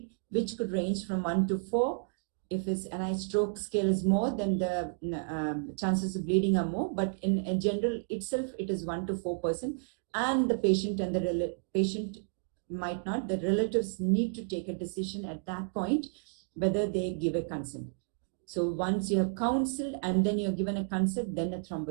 which could range from 1 to 4. If his NIH stroke scale is more, then the chances of bleeding are more. But in general itself, it is 1 to 4%. And the patient and the patient might not. The relatives need to take a decision at that point whether they give a consent. So once you have counseled and then you're given a consent, then a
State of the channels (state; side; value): silent; left; digital silence